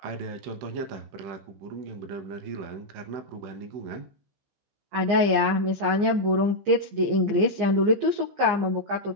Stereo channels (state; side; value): late; left; 15 ms